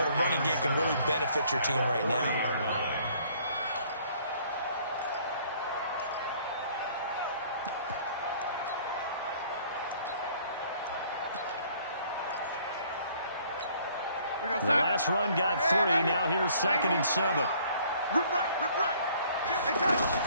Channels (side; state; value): both; inverted; correlation -0.59